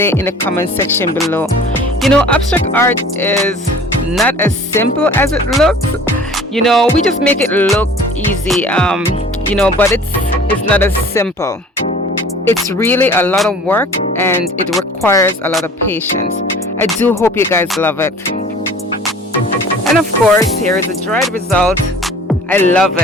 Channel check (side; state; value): both; normal; correlation 0.47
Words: in the comment section below. Abstract art is not as simple as it looks. We just make it look easy, but it's not as simple. It's really a lot of work, and it requires a lot of patience. I do hope you guys love it. And of course, here is the dried result. I love